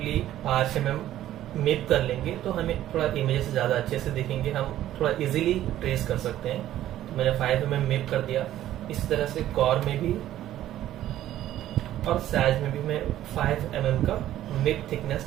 5 mm मैप कर लेंगे तो हमें थोड़ा इमेज से ज़्यादा अच्छे से दिखेंगे, हम थोड़ा इजीली ट्रेस कर सकते हैं। तो मैंने 5 mm मैप कर दिया। इसी तरह से कॉर में भी और साइज में भी मैं 5 mm का मैप थिकनेस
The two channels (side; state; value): left; quieter; 13.0 dB